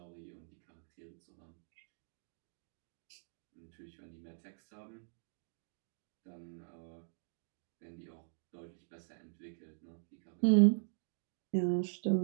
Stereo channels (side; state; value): left; silent; digital silence